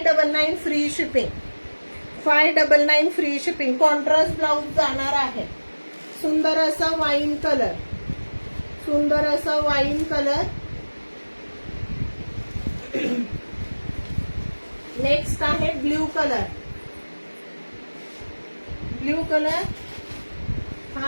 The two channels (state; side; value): inverted; both; correlation -1.00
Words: free shipping. 599 free shipping. Contrast blouse जाणार आहे. सुंदर असा वाईन कलर, सुंदर असा वाईन कलर. नेक्स्ट आहे ब्ल्यू कलर. Blue colour.